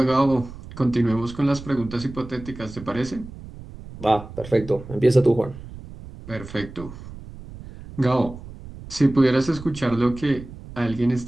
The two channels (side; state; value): right; noise; rumble, 15 dB below the sound